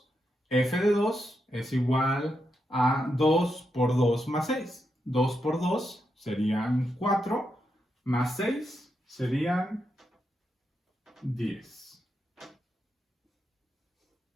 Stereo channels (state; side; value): normal; both; correlation 0.84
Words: F de 2 es igual a 2 por 2 más 6. 2 por 2 serían 4, más 6 serían 10.